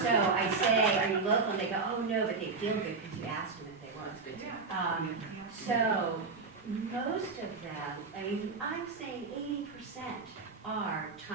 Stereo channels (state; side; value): quieter; left; 4.4 dB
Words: I say, are you local? And they go, oh no, but they feel good because you asked them if they were. That's good too. So most of them, I mean, I'm saying 80% are